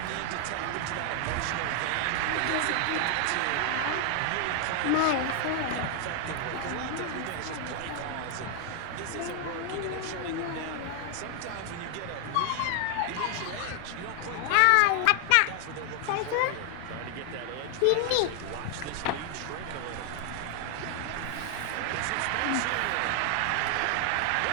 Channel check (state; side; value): different; both; correlation 0.00